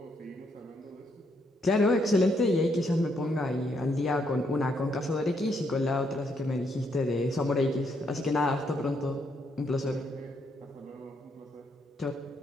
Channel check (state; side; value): normal; both; correlation 0.75